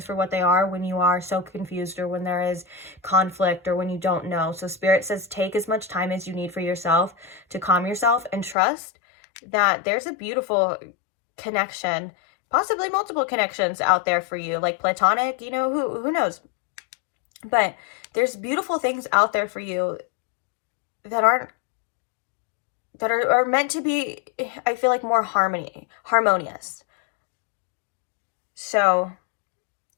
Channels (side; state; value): right; drops out; at 8.6 s